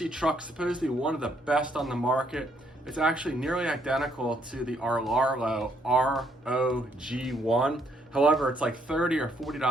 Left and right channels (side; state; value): both; normal; correlation 0.70